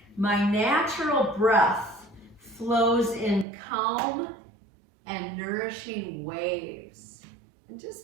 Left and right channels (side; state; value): left; drops out; at 3.5 s